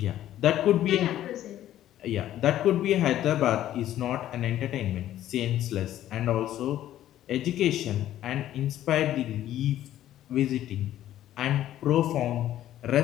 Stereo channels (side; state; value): right; quieter; 12.6 dB